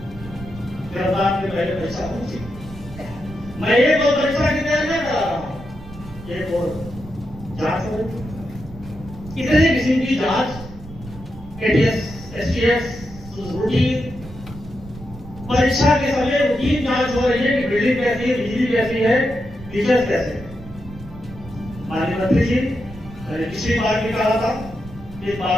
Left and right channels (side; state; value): right; noise; rumble, 16 dB below the sound